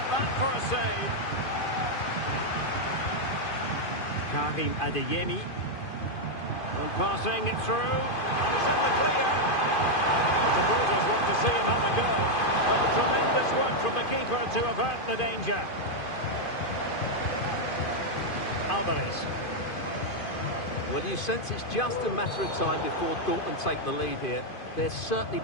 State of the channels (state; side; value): late; right; 2.5 ms